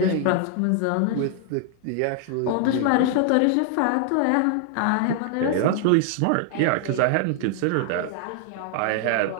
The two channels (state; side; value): different; both; correlation 0.00